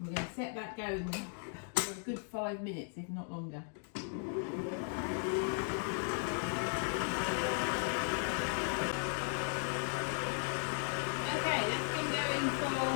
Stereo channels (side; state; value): right; silent; 53 dB below the other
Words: we're going to set that going for a good 5 minutes, if not longer.